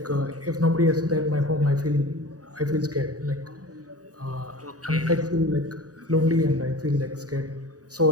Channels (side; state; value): left; late; 0.67 ms